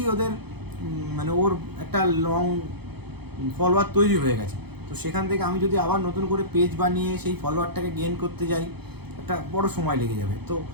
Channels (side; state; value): left; late; 0.98 ms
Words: ওদের মানে ওর একটা লং ফলোয়ার তৈরি হয়ে গেছে। তো সেখান থেকে আমি যদি আবার নতুন করে পেজ বানিয়ে সেই ফলোয়ারটাকে গেইন করতে যাই, একটা বড় সময় লেগে যাবে। তো